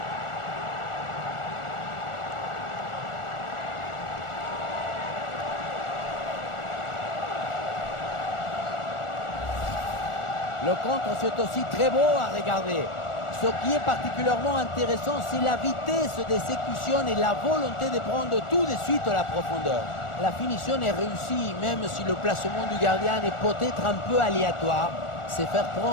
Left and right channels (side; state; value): right; late; 1.4 ms